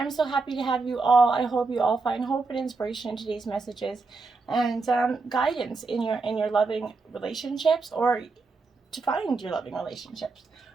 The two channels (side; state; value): left; quieter; 4.0 dB